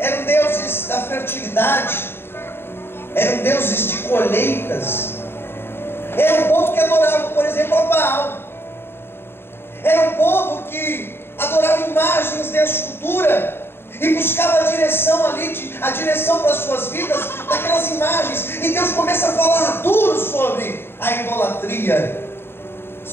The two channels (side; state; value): right; late; 0.11 ms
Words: deuses da fertilidade, eram deuses de colheitas, era um povo que adorava, por exemplo, a Baal, era um povo que adorava imagens de escultura e buscava a direção ali, a direção para as suas vidas daquelas imagens. E Deus começa a falar duro sobre a idolatria,